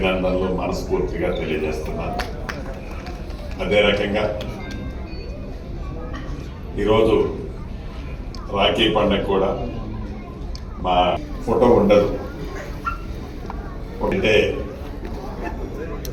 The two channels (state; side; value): identical; both; correlation 1.00